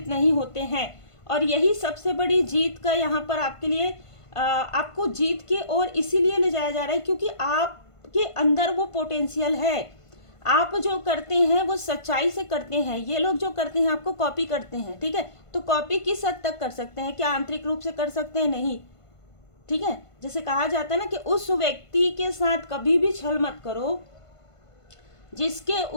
नहीं होते हैं। और यही सबसे बड़ी जीत का यहाँ पर आपके लिए आपको जीत के और इसीलिए ले जाया जा रहा है क्योंकि आपके अंदर वो पोटेंशियल है। आप जो करते हैं वो सच्चाई से करते हैं। ये लोग जो करते हैं आपको कॉपी करते हैं। ठीक है, तो कॉपी किस हद तक कर सकते हैं? क्या आंतरिक रूप से कर सकते हैं? नहीं। ठीक है, जैसे कहा जाता है ना कि उस व्यक्ति के साथ कभी भी छल मत करो जिसके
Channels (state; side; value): late; right; 1.5 ms